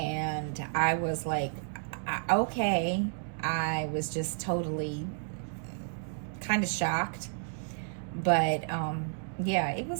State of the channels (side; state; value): left; silent; digital silence